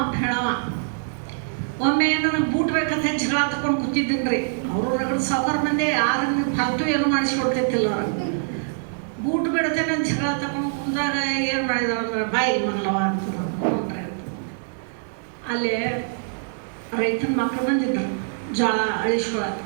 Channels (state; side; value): silent; left; 63 dB below the other